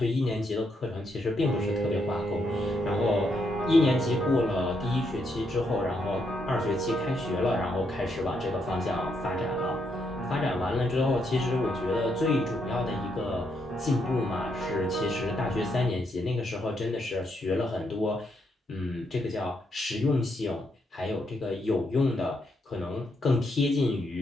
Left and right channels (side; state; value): both; normal; correlation 0.77